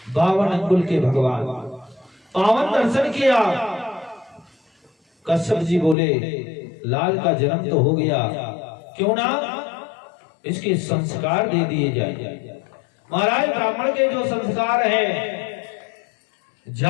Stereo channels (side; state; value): right; drops out; at 6.0 s